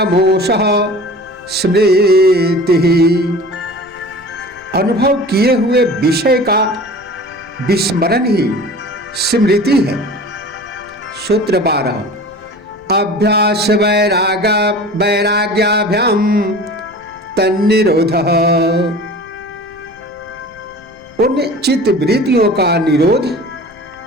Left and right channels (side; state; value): left; noise; rumble, 28 dB below the sound